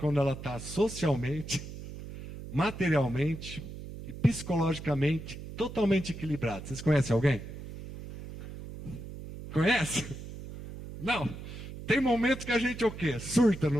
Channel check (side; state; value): right; noise; hum, 11 dB below the sound